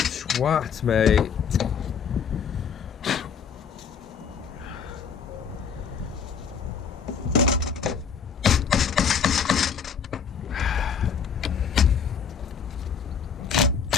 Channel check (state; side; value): quieter; right; 6.7 dB